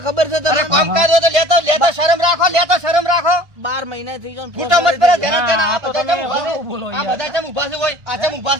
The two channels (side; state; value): left; late; 1.5 ms